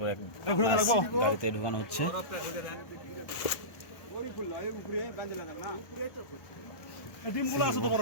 এক গাড়িতে ঢুকানো হচ্ছে।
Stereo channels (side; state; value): right; late; 1.4 ms